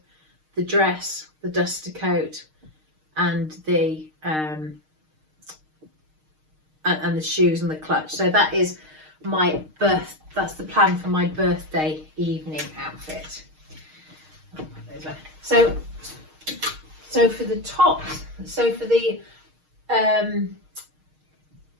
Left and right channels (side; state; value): left; late; 6.5 ms